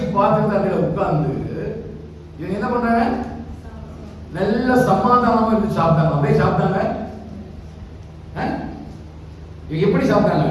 பாத்திரத்துல உட்கார்ந்து இவங்க என்ன பண்றாங்க? நல்ல சமாதானமா இருந்து சாப்பிட்டாங்க. அப்படியே சாப்பிட்டாங்க. எப்படி சாப்பிட்டாங்க?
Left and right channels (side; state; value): both; identical; correlation 1.00